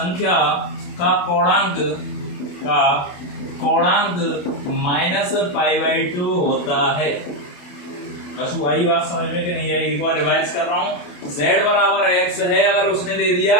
का कोणांक माइनस पाई बाई 2 होता है। कछु आई बात समझ में कि नहीं आई, एक बार रिवाइज कर रहा हूँ। z बराबर x है, अगर उसने दे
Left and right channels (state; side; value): late; right; 28 ms